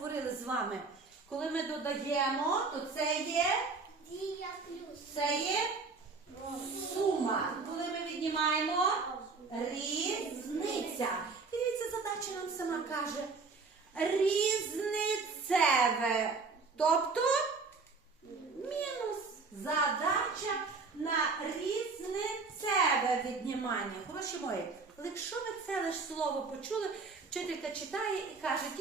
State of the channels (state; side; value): quieter; left; 4.3 dB